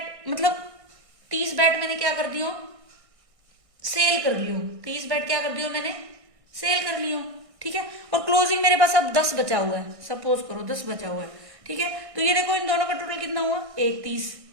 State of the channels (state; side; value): late; left; 1.6 ms